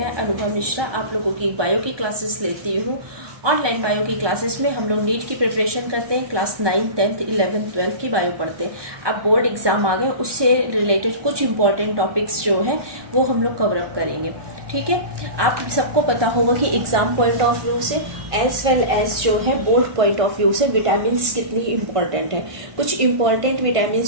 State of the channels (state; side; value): late; left; 1.2 ms